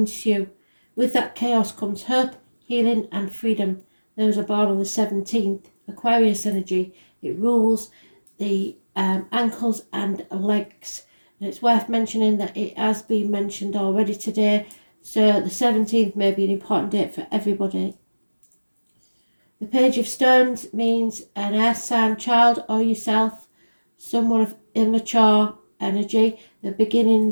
With that chaos comes hope, healing and freedom. Those are born on the 17th. Aquarius energy. It rules the ankles and legs. And it's worth mentioning that it has been mentioned already today. So the 17th may be an important date for everybody. Page of Stones means an air sign child or yourself, someone of immature energy, the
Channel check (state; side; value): inverted; both; correlation -1.00